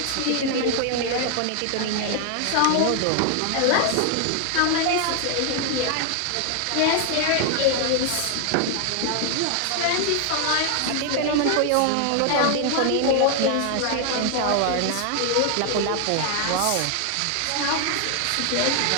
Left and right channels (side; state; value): both; different; correlation 0.00